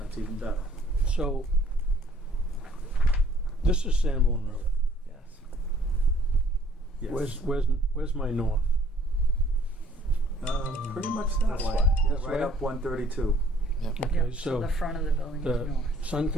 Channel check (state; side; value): normal; both; correlation 0.59